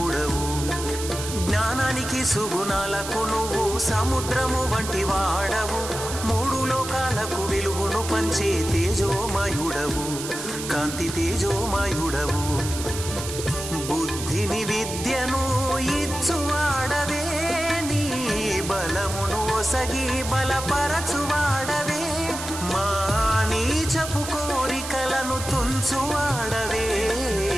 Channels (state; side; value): noise; right; hiss, 8 dB below the sound